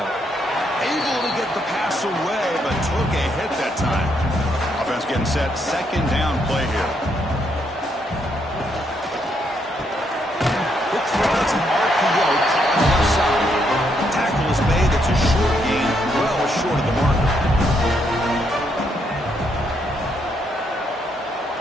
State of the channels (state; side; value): normal; both; correlation 0.75